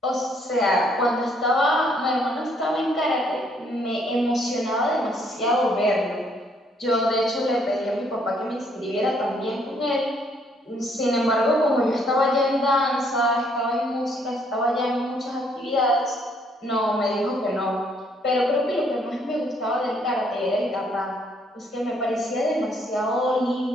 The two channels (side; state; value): both; normal; correlation 0.68